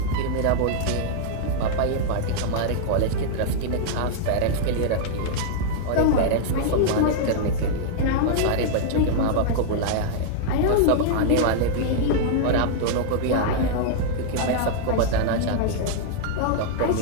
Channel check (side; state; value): both; different; correlation -0.01